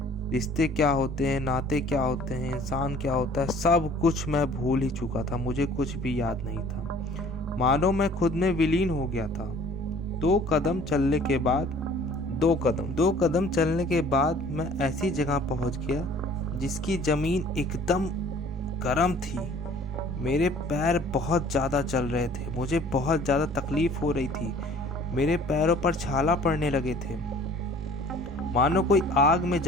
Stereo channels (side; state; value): both; normal; correlation 0.51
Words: रिश्ते क्या होते हैं, नाते क्या होते हैं, इंसान क्या होता है, सब कुछ मैं भूल ही चुका था। मुझे कुछ भी याद नहीं था। मानो मैं खुद में विलीन हो गया था। दो कदम चलने के बाद मैं ऐसी जगह पहुंच गया जिसकी जमीन एकदम गर्म थी। मेरे पैर बहुत ज़्यादा जल रहे थे। मुझे बहुत ज़्यादा तकलीफ हो रही थी। मेरे पैरों पर छाला पड़ने लगे थे, मानो कोई आग में